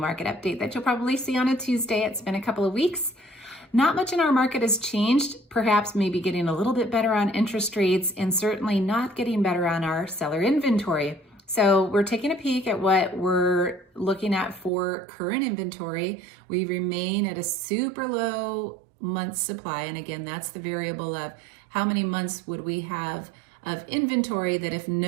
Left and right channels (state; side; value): drops out; left; at 14.7 s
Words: update that you'll probably see on a Tuesday. It's been a couple of weeks. Not much in our market has changed, perhaps maybe getting a little bit better on interest rates and certainly not getting better on our seller inventory. So we're taking a peek at what we're looking at for current inventory. We remain at a super low month supply. And again, that's the variable of how many months would we have of inventory that if